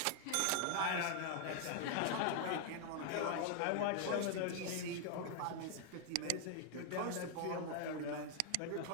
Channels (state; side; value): different; both; correlation 0.00